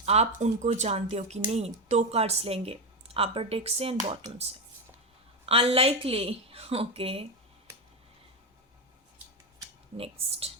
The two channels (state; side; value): normal; both; correlation 0.12